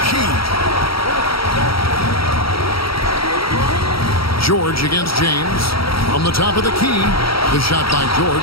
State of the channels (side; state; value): right; late; 0.75 ms